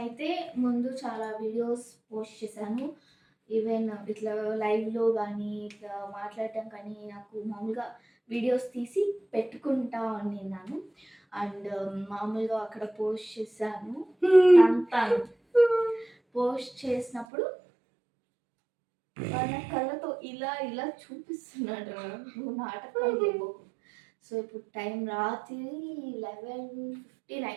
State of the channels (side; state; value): left; drops out; at 17.2 s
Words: ముందు చాలా వీడియోస్ పోస్ట్ చేశాను. ఈవెన్ ఇట్లా లైవ్లో కానీ ఇట్లా మాట్లాడటం కానీ నాకు మామూలుగా వీడియోస్ తీసి పెట్టుకుంటా ఉన్నాను. అండ్ మామూలుగా అక్కడ పోస్ట్ చేశాను. పోస్ట్ చేసినప్పుడు వాళ్ళ కళ్ళతో ఇలా ఇలా చూపిస్తున్నాడు, నువ్వు నాటకాలు. సో ఇప్పుడు టైం రాత్రి 11:15